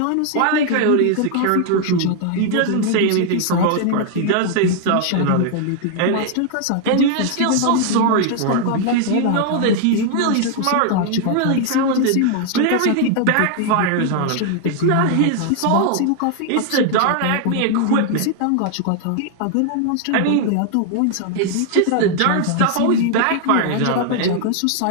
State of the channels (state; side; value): different; both; correlation 0.00